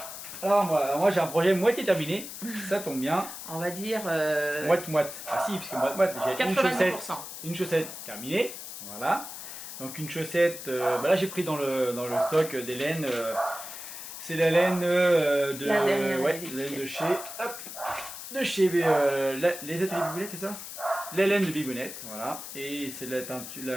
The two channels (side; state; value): left; noise; hiss, 10 dB below the sound